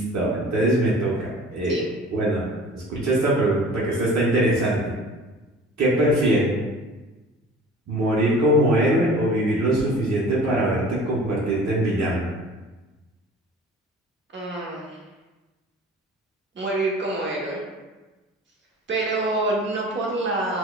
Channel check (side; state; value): both; normal; correlation 0.44